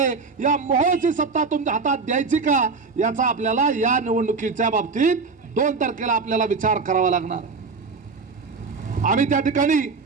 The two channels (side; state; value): left; quieter; 4.6 dB